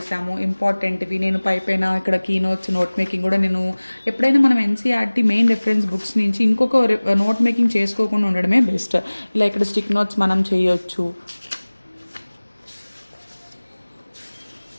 ఇంపార్టెంట్వి. నేను పైన ఇక్కడ కీ నోట్ మేకింగ్ కూడా నేను ఎప్పుడైనా మనం ఎన్సీఆర్టీ మెయిన్ రెఫరెన్స్ బుక్స్ నుంచి ఇంకొక నోట్ మేకింగ్ చేసుకోకుండా ఉండడమే బెస్ట్. ఇలా ఇక్కడ స్టిక్ నోట్స్ మనం చేయొచ్చు.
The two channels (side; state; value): both; inverted; correlation -1.00